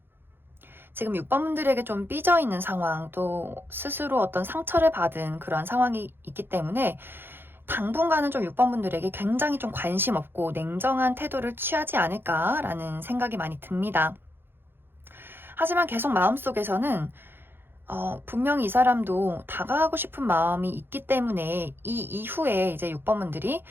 지금 6번 분들에게 좀 삐져 있는 상황, 또 스스로 어떤 상처를 받은 그러한 상황이 있기 때문에 당분간은 좀 6번 분들에게 굉장히 좀 관심 없고 냉정한 태도를 취하지 않을까라는 생각이 많이 듭니다. 하지만 계속 마음속에서는 분명히 이 사람도 다가가고 싶은 마음이 있기 때문에 이 이후에 이제 6번 분들이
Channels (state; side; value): late; left; 0.10 ms